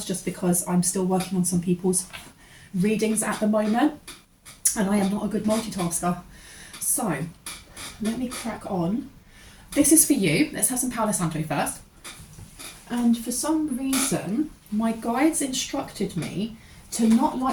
just because I'm still working on some people's readings at the moment, and I am not a good multitasker. So, let me crack on. This is for you. Let's have some Palo Santo first. And for some reason, my guides instructed me to not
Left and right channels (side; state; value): both; identical; correlation 1.00